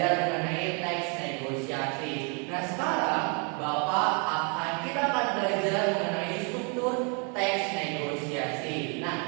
mengenai teks negosiasi. Nah, sekarang kita akan belajar mengenai struktur teks negosiasi.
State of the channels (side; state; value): left; quieter; 36.1 dB